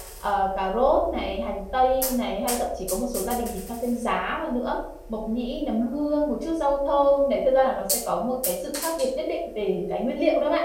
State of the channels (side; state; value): both; identical; correlation 1.00